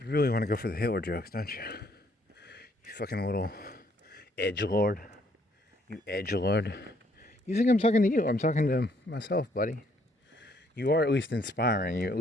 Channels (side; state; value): both; normal; correlation 0.67